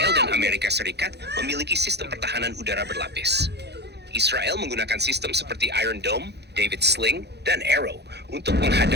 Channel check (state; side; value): late; left; 0.49 ms